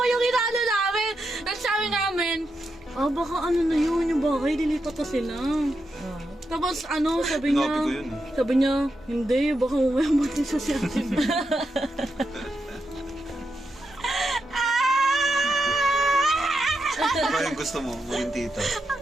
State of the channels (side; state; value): both; normal; correlation 0.85